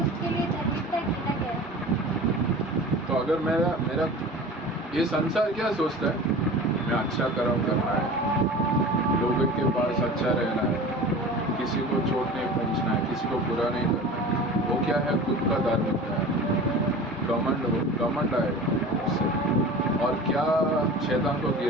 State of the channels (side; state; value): both; normal; correlation 0.37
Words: लिए धार्मिकता गिना गया। तो अगर मेरा ये संसार क्या सोचता है, मैं अच्छा कर्म करना है, लोगों के पास अच्छा रहना है, किसी को चोट नहीं पहुंचना है, किसी को बुरा नहीं करना है, वो क्या है, खुद का धार्मिकता है, घमंड आएगा उससे। और क्या शैतान को